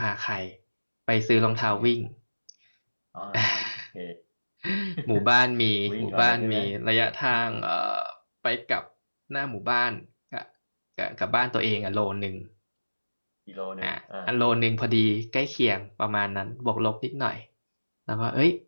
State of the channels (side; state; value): both; inverted; correlation -1.00